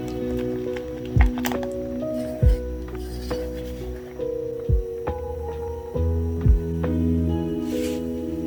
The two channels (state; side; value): identical; both; correlation 1.00